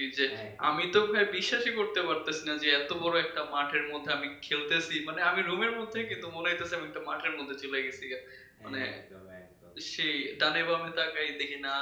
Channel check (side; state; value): both; identical; correlation 1.00